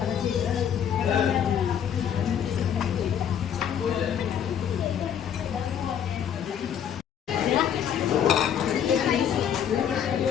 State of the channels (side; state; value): right; quieter; 8.9 dB